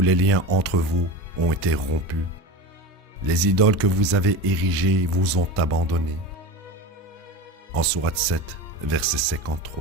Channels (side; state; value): both; normal; correlation 0.28